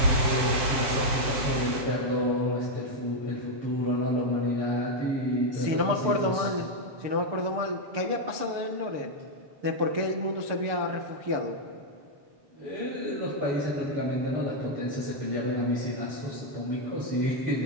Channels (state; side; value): late; left; 6.8 ms